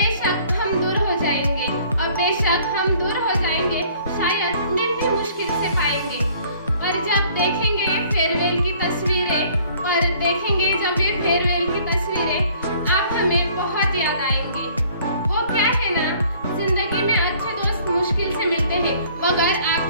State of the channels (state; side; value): inverted; both; correlation -0.56